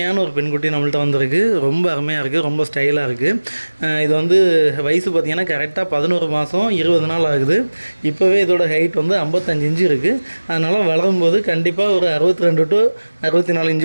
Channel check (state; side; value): inverted; both; correlation -1.00